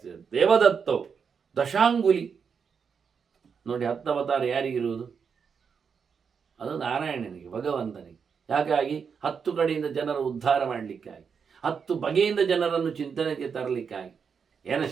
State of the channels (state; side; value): quieter; left; 6.3 dB